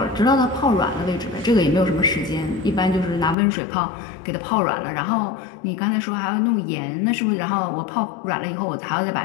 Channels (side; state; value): right; drops out; at 3.4 s